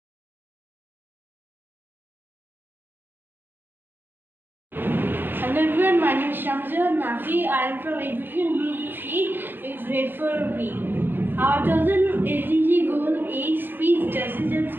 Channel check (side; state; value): left; late; 0.093 ms